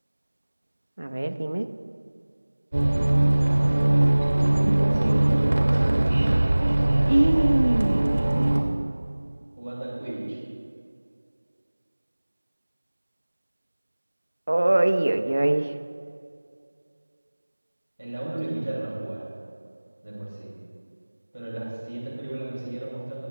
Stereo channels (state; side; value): inverted; both; correlation -1.00